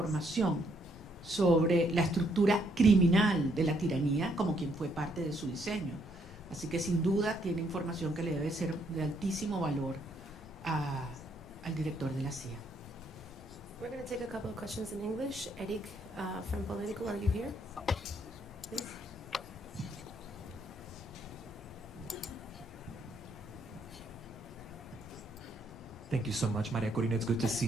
sobre la estructura criminal de la tiranía como quien fue parte de su diseño. Así que sin duda tiene información que le debe ser de altísimo valor al director de la CIA. We're going to take a couple of questions in English. Eric from Politico, are you here? Please. Thank you so much, María Corina. It's good to see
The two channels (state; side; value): normal; both; correlation 0.71